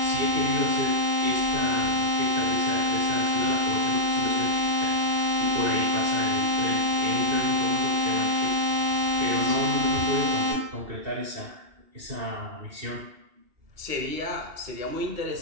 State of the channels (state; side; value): late; left; 2.8 ms